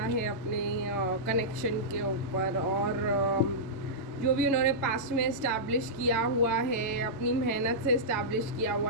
है अपने कनेक्शन के ऊपर। और जो भी उन्होंने पास्ट में इस्टेब्लिश किया हुआ है, अपनी मेहनत से इस्टेब्लिश किया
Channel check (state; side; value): late; right; 1.1 ms